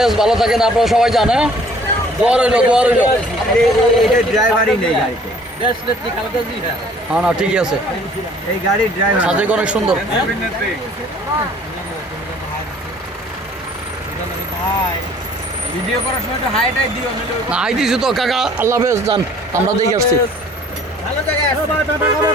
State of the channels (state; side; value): normal; both; correlation 0.55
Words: ভালো থাকেন আপনারা সবাই জান। হ্যাঁ দোয়া রইল, দোয়া রইল। ড্রাইভারই নেই গাড়িতে। হ্যাঁ না ঠিকই আছে, এই গাড়ির ড্রাইভার সাজেক অনেক সুন্দর। ভিডিও করার সময় তো হাইটাই দিও না হাই দিছি তো কাকা, আল্লাহ হাফেজ যান, আমরা দেখে আসছি। ভালো জায়গায় আছে